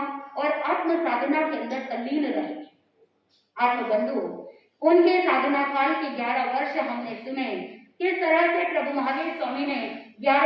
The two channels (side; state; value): both; identical; correlation 1.00